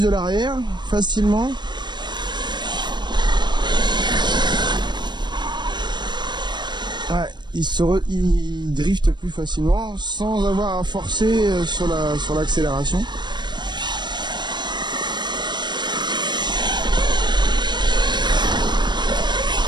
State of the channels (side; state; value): left; late; 0.22 ms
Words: de l'arrière facilement. Ouais, il drift plus facilement sans avoir à forcer sur l'accélération.